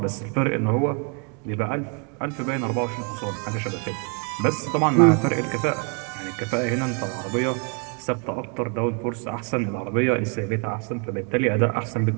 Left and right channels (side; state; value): left; quieter; 36.8 dB